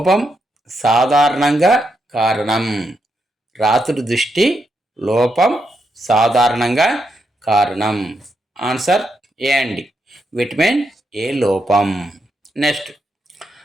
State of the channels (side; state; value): both; normal; correlation 0.82